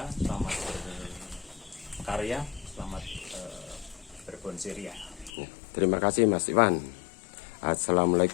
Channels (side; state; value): right; drops out; at 5.3 s